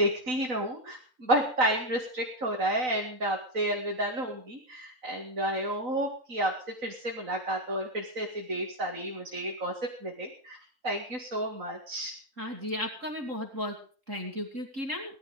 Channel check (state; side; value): late; left; 3.9 ms